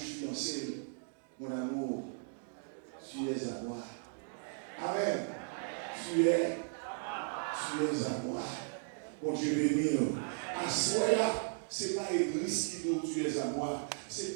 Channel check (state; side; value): silent; left; digital silence